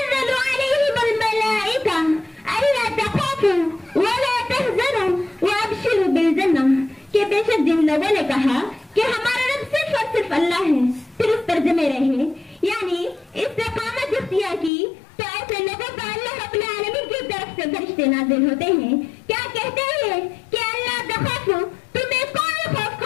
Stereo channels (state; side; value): drops out; right; at 14.7 s